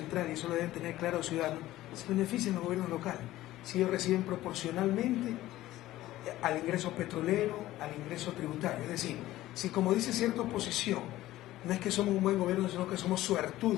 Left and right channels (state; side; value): quieter; right; 15.5 dB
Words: y eso lo deben tener claro los ciudadanos, se benefician los gobiernos locales. Si ellos reciben proporcionalmente al ingreso petrolero, al ingreso tributario. Es decir, si como dice cierta oposición, no es que somos un buen gobierno, sino que somos